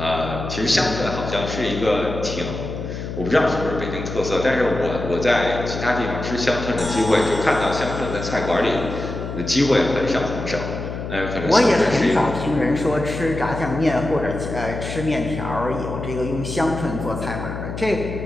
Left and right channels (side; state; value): left; noise; hum, 7 dB below the sound